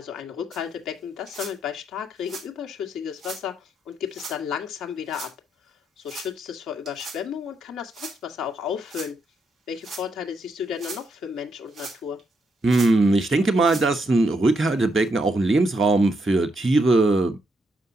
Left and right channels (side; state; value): both; normal; correlation 0.78